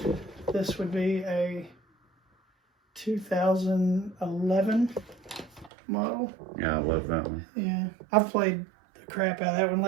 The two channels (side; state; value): left; drops out; at 5.7 s